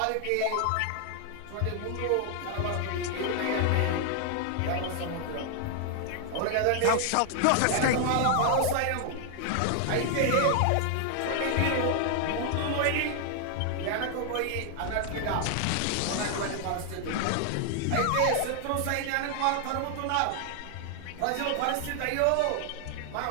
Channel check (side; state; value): both; different; correlation 0.00